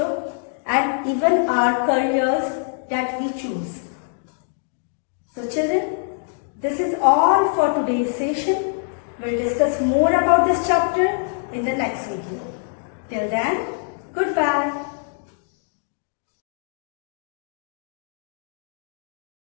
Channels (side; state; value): right; silent; 63 dB below the other